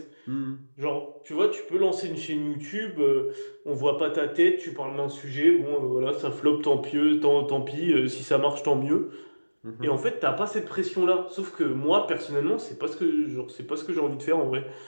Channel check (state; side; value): inverted; both; correlation -1.00